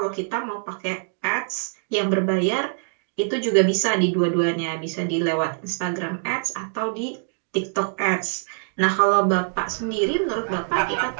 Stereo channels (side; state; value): left; silent; digital silence